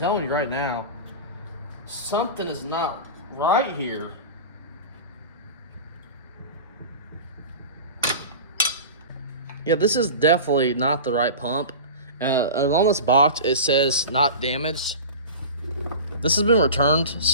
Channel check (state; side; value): inverted; both; correlation -0.32